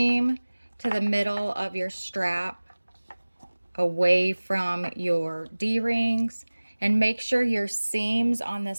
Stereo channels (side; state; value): both; inverted; correlation -1.00